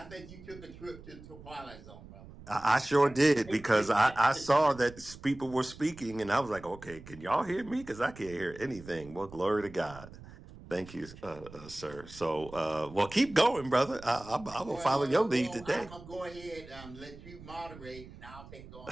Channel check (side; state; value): right; noise; rumble, 17 dB below the sound